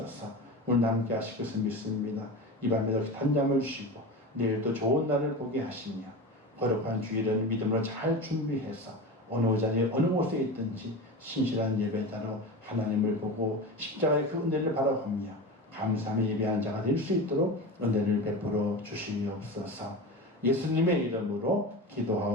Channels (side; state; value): both; normal; correlation 0.27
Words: 오늘 함께 하실 것을 믿습니다. 이 밤에도 단잠을 쉬고 내일 또 좋은 날을 보게 하시며 거룩한 주일은 믿음으로 잘 준비해서 어느 자리에 어느 곳에 있든지 신실한 예배자로 하나님을 보고 십자가의 그 은혜를 바라보며 감사하며 예배한 자가 될 수 있도록 은혜를 베풀어 주시옵소서. 예수님의 이름으로